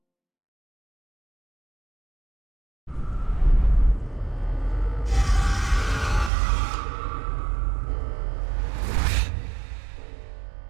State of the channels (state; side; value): drops out; left; at 6.3 s